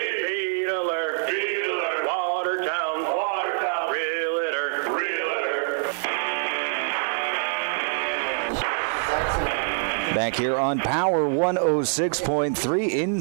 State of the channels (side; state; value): left; silent; 61 dB below the other